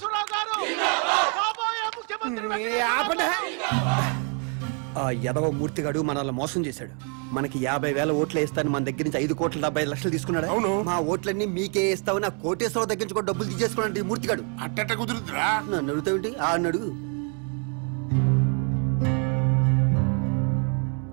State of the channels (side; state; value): left; quieter; 39.2 dB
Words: గారు కాబోయే ముఖ్యమంత్రి. ఆ యదవ మూర్తిగాడు మనల్ని మోసం చేశాడు. మనకి 50,000 ఓట్లు వేస్తాను మన దగ్గర నుంచి 5,75 లక్షలు తీసుకున్నాడు. అవును. మా ఓట్లన్నీ మీకే వేస్తావు. నా కోటేశ్వరరావు దగ్గర నుంచి కూడా డబ్బులు తీసేసుకున్నాడు ఈ మూర్తిగాడు. అట్టట కుదురుతురా? నన్ను అడుగుతావేంటి? ఆ అడుగు.